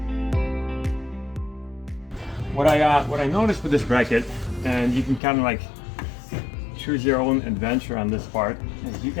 What I noticed with this bracket, and you can kind of like choose your own adventure on this part, is you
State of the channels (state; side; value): drops out; right; at 5.2 s